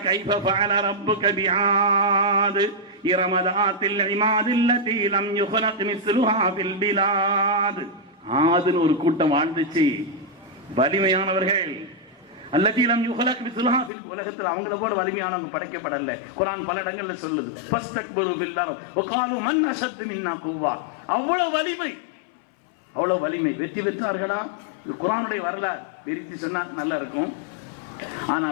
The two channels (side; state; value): right; drops out; at 13.9 s